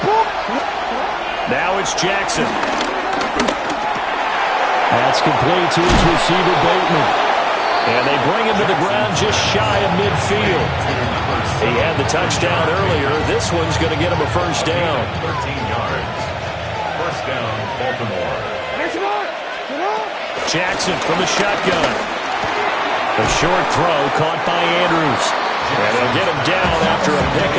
Now it's Jackson. That's complete to his receiver, Bateman. And they bring him to the ground just shy of midfield. He had the touchdown earlier. This one's going to get him a first down. 13 yards. First down, Baltimore. Jackson from the shotgun. A short throw caught by Andrews. And they'll get him down after a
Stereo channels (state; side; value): identical; both; correlation 1.00